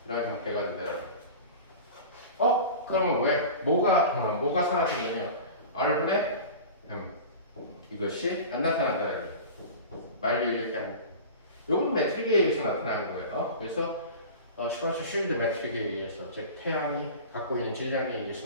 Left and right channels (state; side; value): inverted; both; correlation -0.34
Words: 이라는 형태가 된다. 그러면 왜 뭐가 사라진 거냐? r분의 m 이것이 안 나타난다는 거예요. 말리 이렇게 안. 요건 매트릭에 의해서 나타나는 거예요. 그래서 슈퍼스 쉴드 매트릭에 의해서 즉 태양이 갖고 있는 질량에